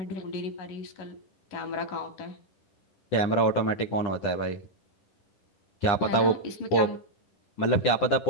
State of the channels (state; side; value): late; right; 10 ms